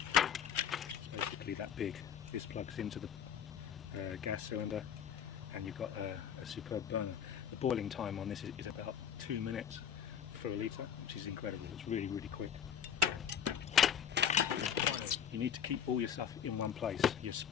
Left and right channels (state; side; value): quieter; right; 8.5 dB